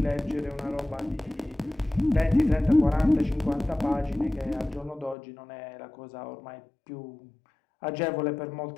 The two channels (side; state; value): right; drops out; at 5.2 s